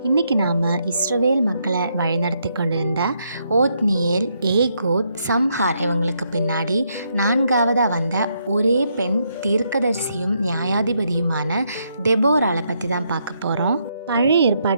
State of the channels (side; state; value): both; inverted; correlation -0.77